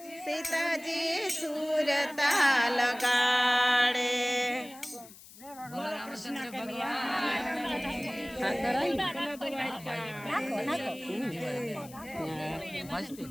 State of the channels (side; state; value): left; noise; hiss, 19 dB below the sound